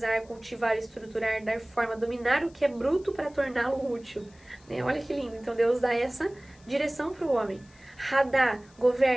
cultivar, estruturar, dar forma, dominar o que é bruto para torná-lo útil. Né? Olha que lindo. Então Deus dá essa direção para o homem. Hadá,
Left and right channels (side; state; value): left; noise; hiss, 29 dB below the sound